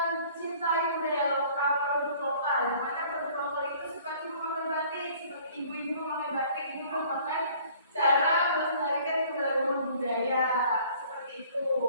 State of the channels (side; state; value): both; inverted; correlation -0.53